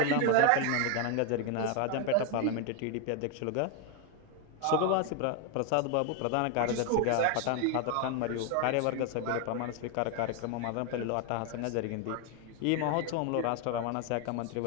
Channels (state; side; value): different; both; correlation 0.01